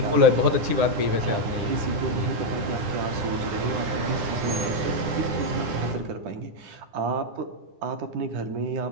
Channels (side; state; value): left; late; 9.9 ms